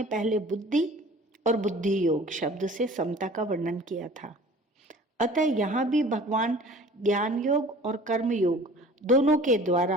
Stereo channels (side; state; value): both; normal; correlation 0.46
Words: पहले बुद्धि और बुद्धि योग शब्द से समता का वर्णन किया था। अतः यहाँ भी भगवान ज्ञान योग और कर्म योग दोनों के